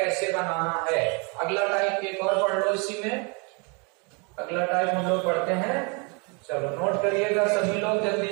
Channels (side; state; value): left; quieter; 33.0 dB